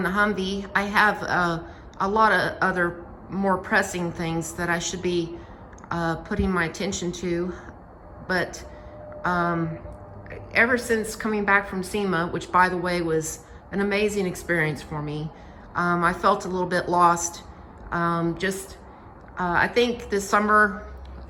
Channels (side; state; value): both; identical; correlation 1.00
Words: the Humvee. I have a lot of other more pressing things that I should be putting my attention to, but ever since coming back from SEMA, which by the way was an amazing experience for me, I felt a little bit lost. I think this summer,